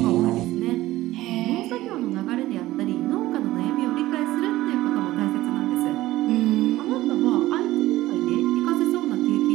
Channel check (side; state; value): left; quieter; 16.5 dB